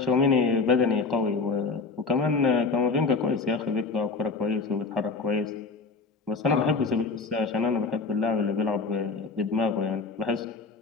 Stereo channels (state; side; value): quieter; right; 4.1 dB